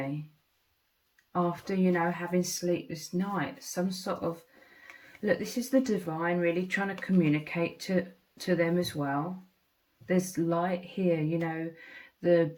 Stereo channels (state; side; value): identical; both; correlation 1.00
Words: after, you know, having sleepless nights. Some sort of, look, this is the divine really trying to communicate to them as well. There's light here, you know, the